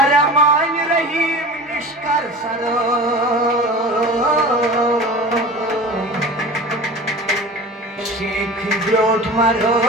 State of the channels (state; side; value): normal; both; correlation 0.36